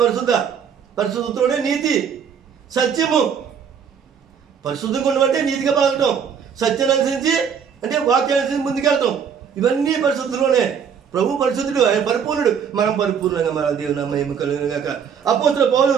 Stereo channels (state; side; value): quieter; left; 7.2 dB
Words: పరిశుద్ధ. పరిశుద్ధతోనే నీతి, సత్యము. పరిశుద్ధంగా ఉండమంటే నీతిగా పలకటం, సత్యాన్ని అనుసరించి అంటే వాక్యాన్ని అనుసరించి ముందుకెళ్తాం. ఇవన్నీ పరిశుద్ధులోనే. ప్రభు పరిశుద్ధుడు, ఆయన పరిపూర్ణుడు, మనం పరిపూర్ణంగా మన దేవుని మహిమ కలుగును గాక. అపోస్తలుడైన పౌలు